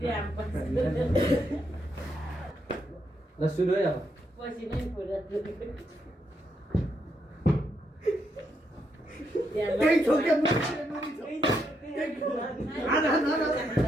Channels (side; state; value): both; normal; correlation 0.79